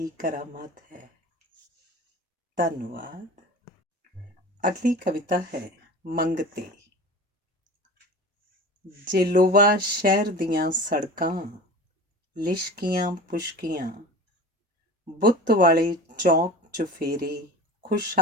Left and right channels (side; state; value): both; normal; correlation 0.36